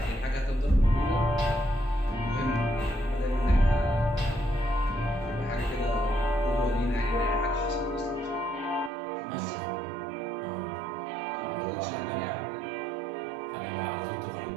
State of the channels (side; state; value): left; drops out; at 8.9 s